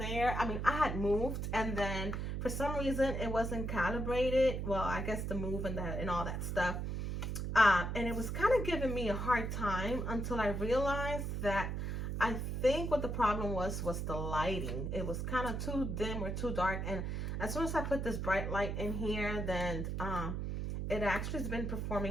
I mean, I had moved, and then for some reason it wasn't calibrated. Well, I guess the move and all that stuff. And it was kind of giving me a hard time until I realized that I think what the problem was the lighting. It was kind of too dim or too dark. And as soon as I put this bright light in here, then it actually has been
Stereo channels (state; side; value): noise; right; hum, 2 dB below the sound